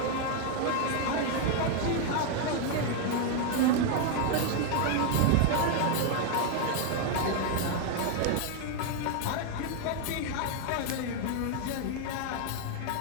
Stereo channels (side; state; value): both; different; correlation 0.01